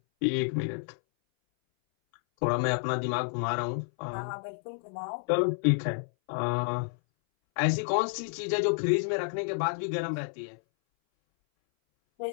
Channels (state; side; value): silent; right; 58 dB below the other